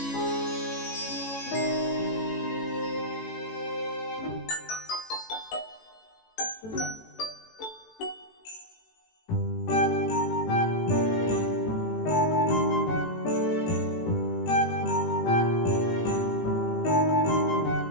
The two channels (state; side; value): late; right; 18 ms